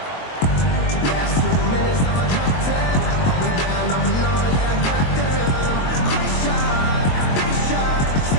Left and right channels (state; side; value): late; right; 22 ms